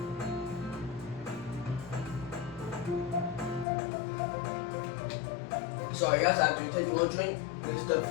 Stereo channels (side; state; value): right; drops out; at 3.7 s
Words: So I guess I have to take a little drink. This stuff